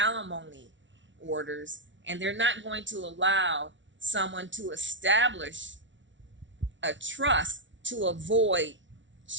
orders, and they're not going to allow someone to establish a trust to avoid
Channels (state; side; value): late; left; 0.55 ms